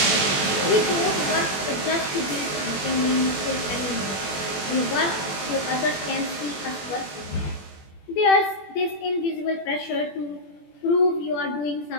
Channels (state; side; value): late; right; 21 ms